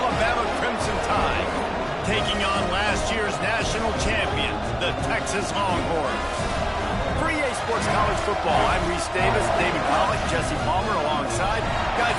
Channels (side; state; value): both; identical; correlation 1.00